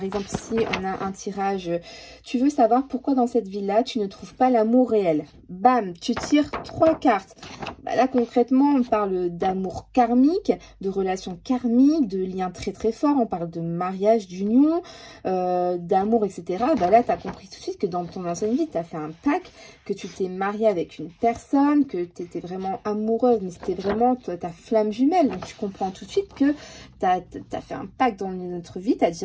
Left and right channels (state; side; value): identical; both; correlation 1.00